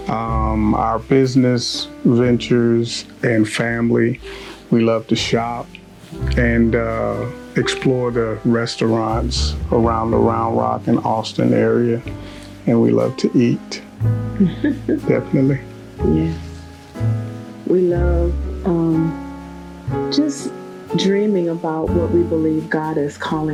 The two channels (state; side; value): identical; both; correlation 1.00